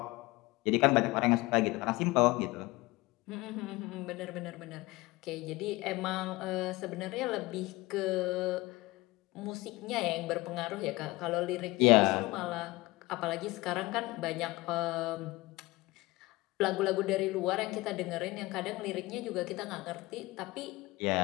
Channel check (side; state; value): right; quieter; 21.0 dB